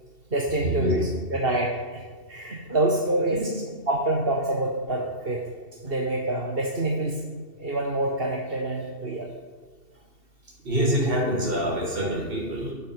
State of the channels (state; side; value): late; left; 2.7 ms